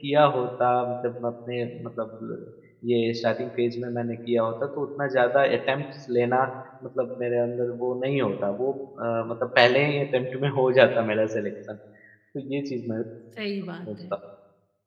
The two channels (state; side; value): identical; both; correlation 1.00